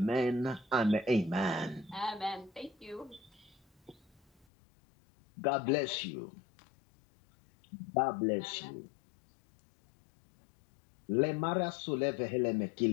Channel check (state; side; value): drops out; right; at 4.5 s